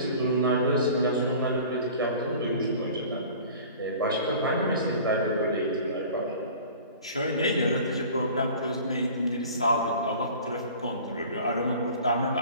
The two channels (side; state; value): both; inverted; correlation -0.43